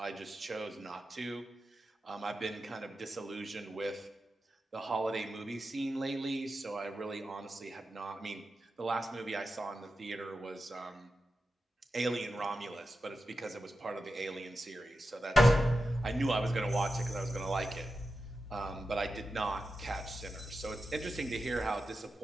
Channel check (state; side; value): normal; both; correlation 0.90